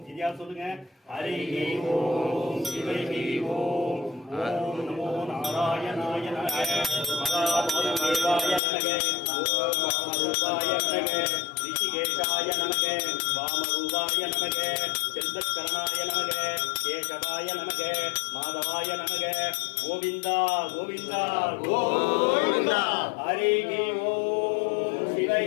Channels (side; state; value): right; drops out; at 8.6 s